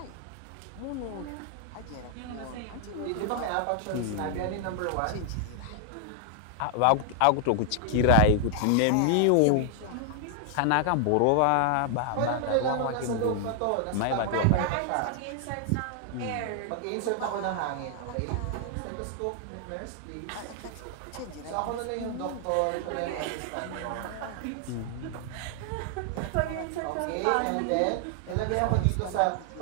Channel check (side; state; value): both; different; correlation 0.00